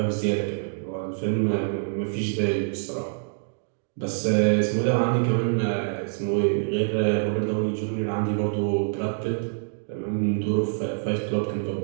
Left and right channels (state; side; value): silent; left; digital silence